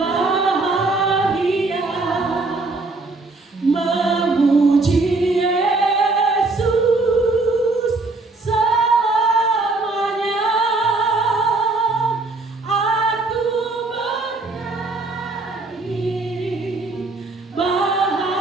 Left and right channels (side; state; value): left; quieter; 3.4 dB